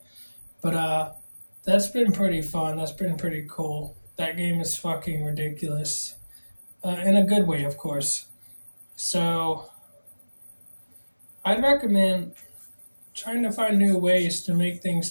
But that's been pretty fun. That's been pretty cool. That game is fucking ridiculous. In a good way, of course. So, I'd recommend trying to find new ways to make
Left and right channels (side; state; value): both; inverted; correlation -1.00